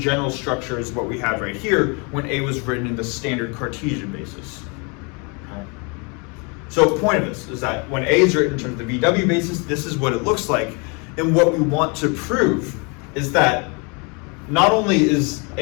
structure as what we have right here when A was written in the standard Cartesian basis. Okay. So the point of this is that when A is written in terms of the VW basis, this is what it looks like. And what we want to prove is that not only is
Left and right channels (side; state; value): right; quieter; 32.3 dB